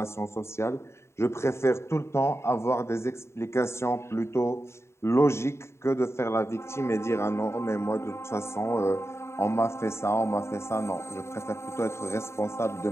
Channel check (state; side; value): late; right; 0.13 ms